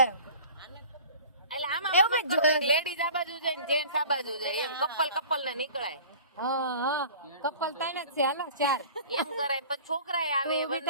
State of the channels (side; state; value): both; inverted; correlation -0.43